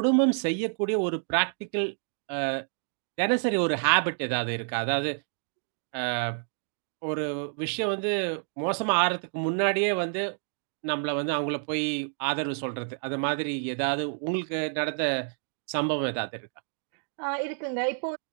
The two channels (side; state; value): left; silent; digital silence